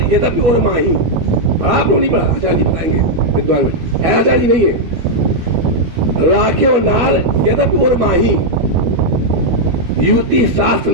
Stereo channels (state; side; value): late; left; 12 ms